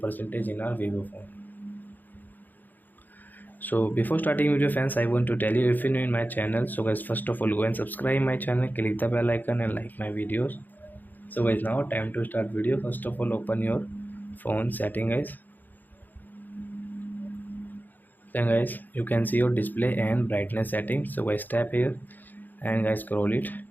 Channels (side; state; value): right; late; 0.086 ms